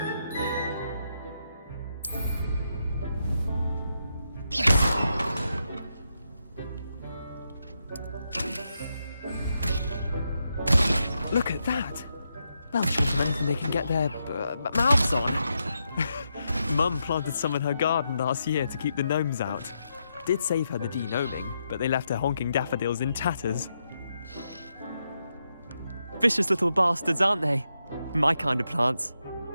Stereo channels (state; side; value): inverted; both; correlation -0.83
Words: Look at that! They'll show them anything they can get their mouths on. Mum planted some in her garden last year to keep the gnomes out. Did save her the de-gnoming, but they left her honking daffodils in tatters. Vicious little bastards, aren't they? My kind of plants.